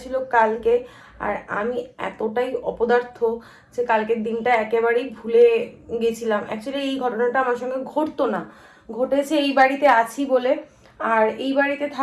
ছিল কালকে। আর আমি এতটাই অপদার্থ যে কালকের দিনটা একেবারেই ভুলে গেছিলাম। অ্যাকচুয়ালি এই ঘটনাটা আমার সঙ্গে ঘটতো না, ঘটেছে এই বাড়িতে আছি বলে। আর এই বাড়িতে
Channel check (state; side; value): identical; both; correlation 1.00